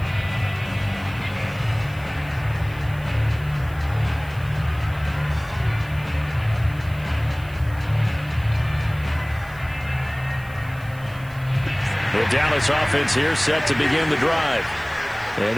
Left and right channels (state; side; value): noise; right; hiss, 24 dB below the sound